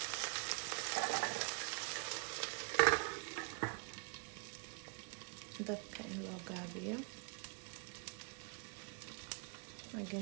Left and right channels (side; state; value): left; quieter; 38.6 dB